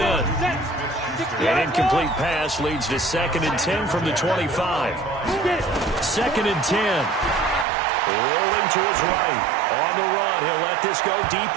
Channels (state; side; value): drops out; left; at 7.7 s